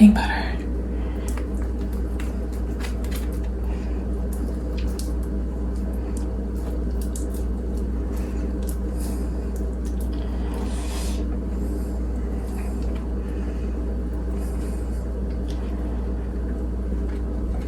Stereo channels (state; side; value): identical; both; correlation 1.00